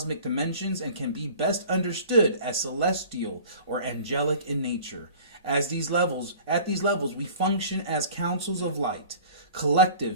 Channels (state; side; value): inverted; both; correlation -0.45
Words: dimensions and can be best understood as celestial or angelic in nature. At these levels, we function as councils of light,